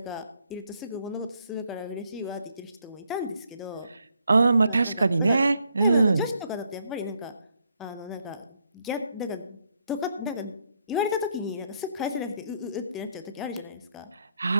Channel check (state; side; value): inverted; both; correlation -0.73